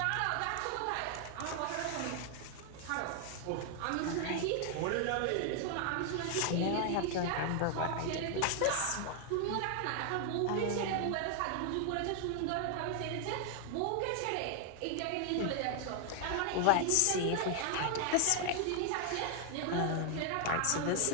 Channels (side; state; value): both; different; correlation 0.00